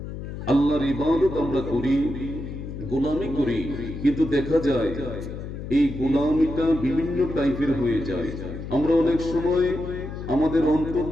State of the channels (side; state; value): left; noise; hum, 8 dB below the sound